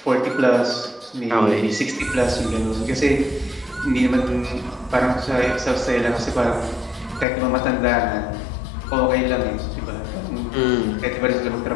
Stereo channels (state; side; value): drops out; right; at 7.2 s